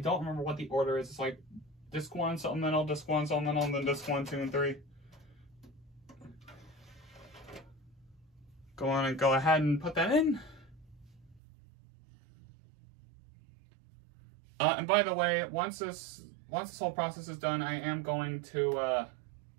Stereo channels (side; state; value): left; drops out; at 11.4 s